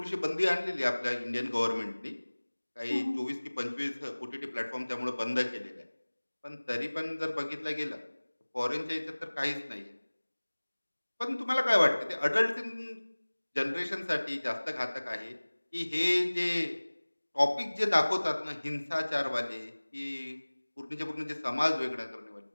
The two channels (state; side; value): inverted; both; correlation -1.00